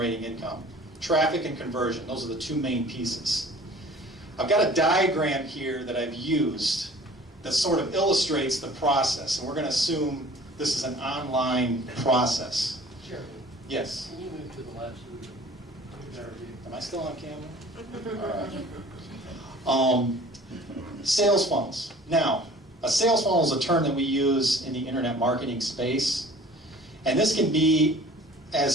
income. Traffic and conversion, those are the two main pieces. I've got a diagram here that I've used that sort of illustrates the process, and we're going to assume this is an online process. Sure. Yes? Can you move to the left? Am I still on camera? All right. Sales funnels. Now, a sales funnel is a term that we use in the internet marketing space, and this can be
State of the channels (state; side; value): normal; both; correlation 0.48